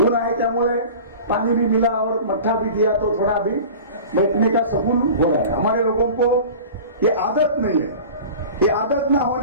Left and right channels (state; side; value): inverted; both; correlation -0.37